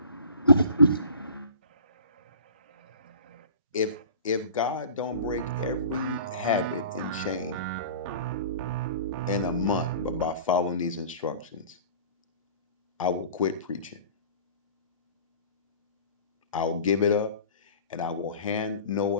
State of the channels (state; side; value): inverted; both; correlation -0.42